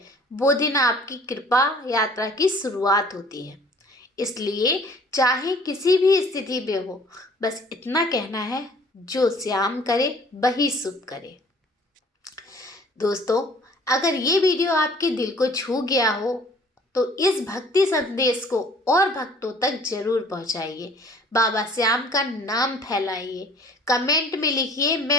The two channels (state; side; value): normal; both; correlation 0.53